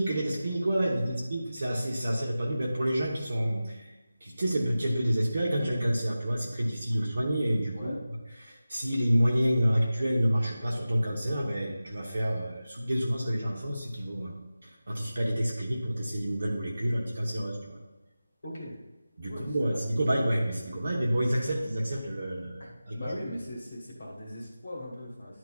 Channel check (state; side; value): inverted; both; correlation -0.95